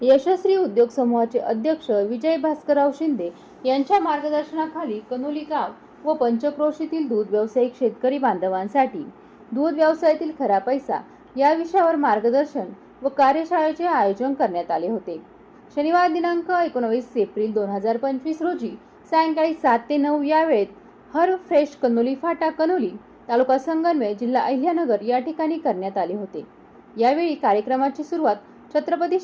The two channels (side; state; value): both; identical; correlation 1.00